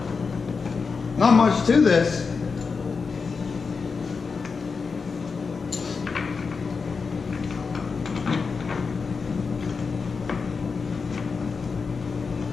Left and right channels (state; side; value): quieter; right; 5.0 dB